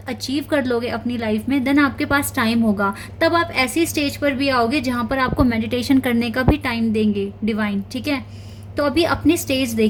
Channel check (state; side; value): identical; both; correlation 1.00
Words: अचीव कर लोगे अपनी लाइफ में, देन आपके पास टाइम होगा। तब आप ऐसी स्टेज पर भी आओगे जहाँ पर आपको मेडिटेशन करने का भी टाइम देंगे डिवाइन, ठीक है। तो अभी अपनी स्टेज